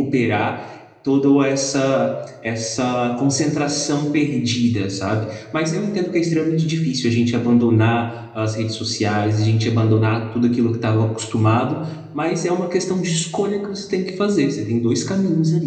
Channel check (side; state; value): both; identical; correlation 1.00